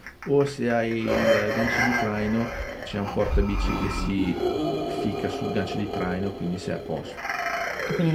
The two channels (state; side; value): identical; both; correlation 1.00